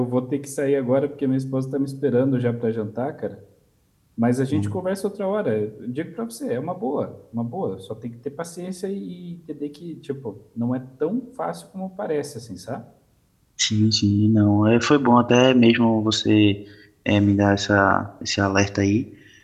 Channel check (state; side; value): identical; both; correlation 1.00